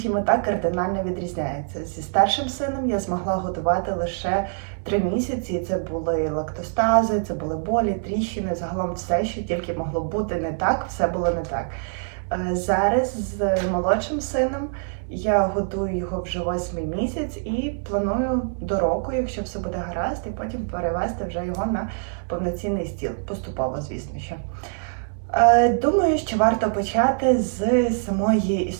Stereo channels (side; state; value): left; silent; digital silence